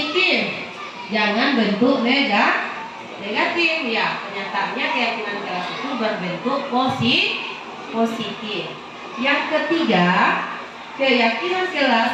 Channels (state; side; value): identical; both; correlation 1.00